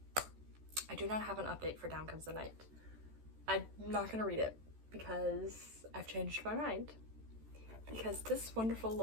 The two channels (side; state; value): left; late; 14 ms